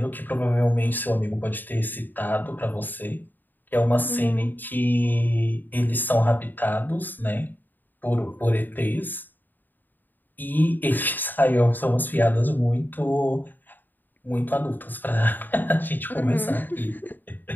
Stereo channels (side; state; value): right; late; 0.089 ms